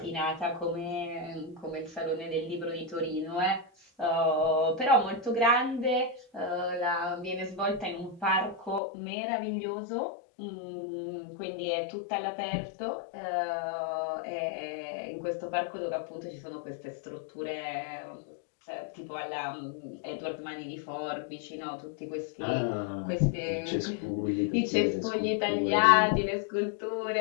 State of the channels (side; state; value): right; drops out; at 8.8 s